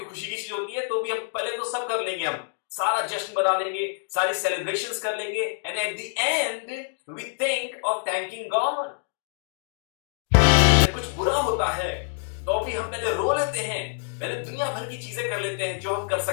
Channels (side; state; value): right; silent; digital silence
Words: की चीज होती है तो भी हम पहले तो सब कर लेंगे, हम सारा जश्न बना लेंगे, सारी सेलिब्रेशंस कर लेंगे, and at the end we think of thanking God. कुछ बुरा होता है तो भी हम पहले रो लेते हैं, पहले दुनिया भर की चीजें कर लेते हैं जो हम कर